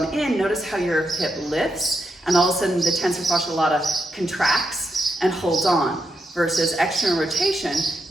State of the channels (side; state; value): both; normal; correlation 0.84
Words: in, notice how your hip lifts, and all of a sudden the tensor fascia lata contracts and holds on, versus external rotation.